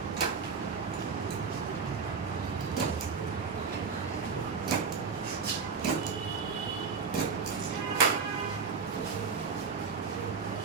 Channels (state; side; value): quieter; left; 5.4 dB